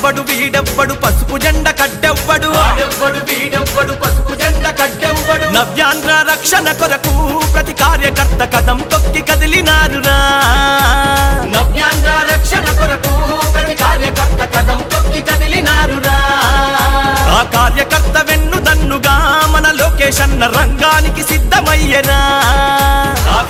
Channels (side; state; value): both; identical; correlation 1.00